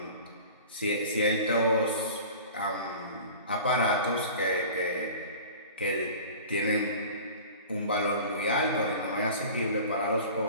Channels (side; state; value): both; inverted; correlation -0.40